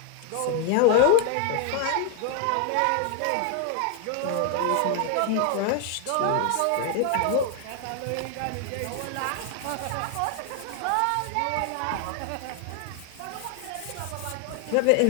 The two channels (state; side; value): different; both; correlation 0.00